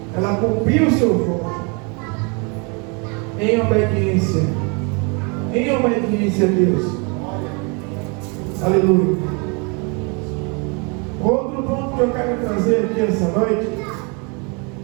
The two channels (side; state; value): left; quieter; 33.1 dB